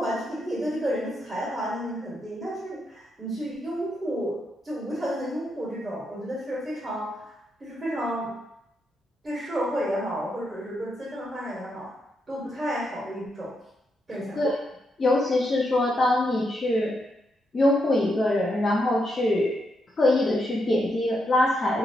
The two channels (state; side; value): normal; both; correlation 0.81